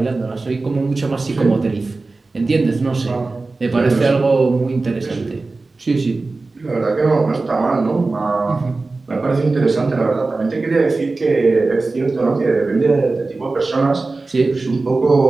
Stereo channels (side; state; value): left; quieter; 3.6 dB